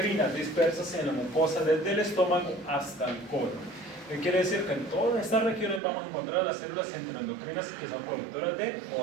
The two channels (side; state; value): left; drops out; at 5.8 s